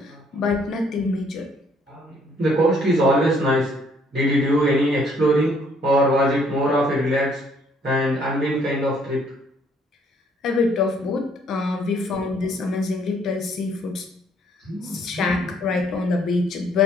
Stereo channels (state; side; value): normal; both; correlation 0.64